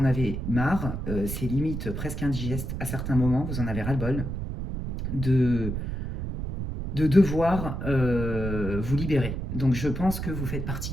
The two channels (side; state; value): right; noise; rumble, 4 dB below the sound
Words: avez marre, c'est limite presque indigeste à certains moments, vous en avez ras-le-bol de devoir vous libérer. Donc je pense que vous faites partie